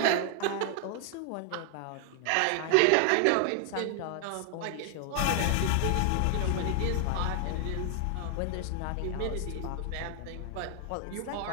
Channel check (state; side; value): different; both; correlation 0.00